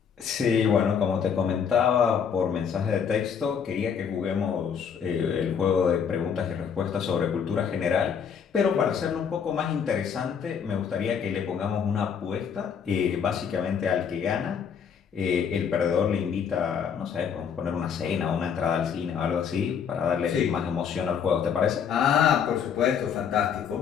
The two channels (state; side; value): quieter; right; 7.2 dB